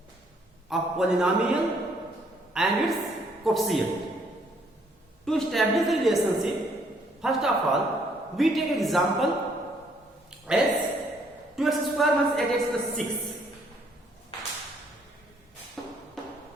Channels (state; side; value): normal; both; correlation 0.67